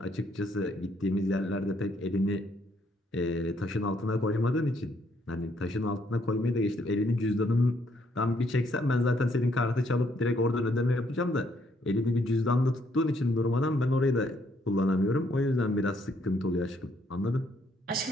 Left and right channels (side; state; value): both; normal; correlation 0.70